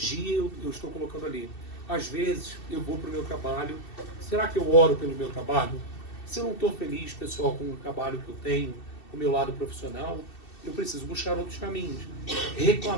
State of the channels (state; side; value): late; right; 2.7 ms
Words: eu estou colocando ali. Às vezes eu vou para o meu trabalho. Será que eu oro pelo meu trabalho? Se eu não estou feliz, pessoal, com o trabalho que eu tenho, com o meu lado profissional, eu preciso buscar outros caminhos.